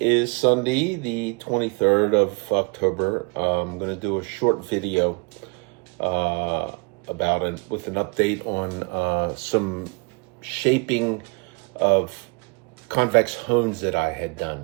Sunday, the 23rd of October. I'm going to do a short video about it with an update on some shaping of convex hones that I had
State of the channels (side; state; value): left; quieter; 32.2 dB